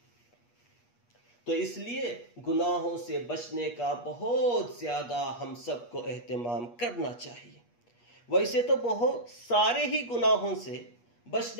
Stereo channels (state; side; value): late; right; 8.4 ms